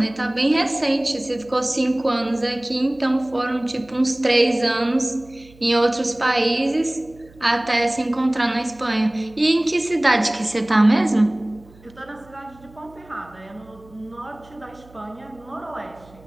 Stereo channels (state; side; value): noise; right; hum, 25 dB below the sound